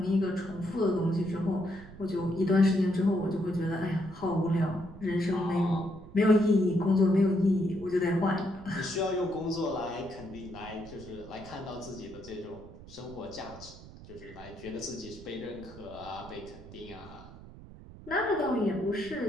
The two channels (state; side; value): noise; right; rumble, 17 dB below the sound